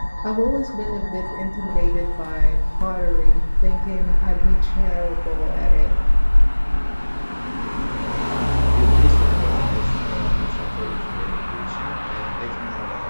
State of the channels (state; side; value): inverted; both; correlation -1.00